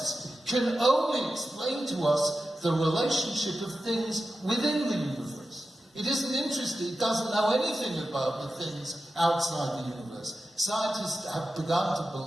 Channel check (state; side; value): normal; both; correlation 0.92